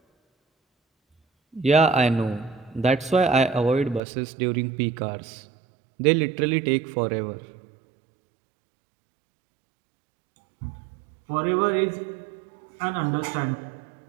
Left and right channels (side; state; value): left; drops out; at 4.0 s